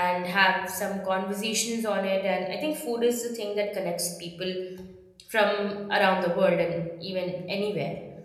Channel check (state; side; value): identical; both; correlation 1.00